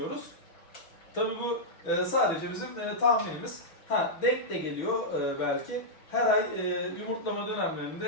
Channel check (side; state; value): right; late; 6.1 ms